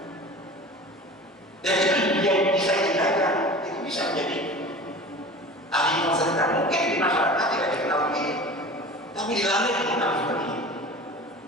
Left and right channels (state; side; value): normal; both; correlation 0.37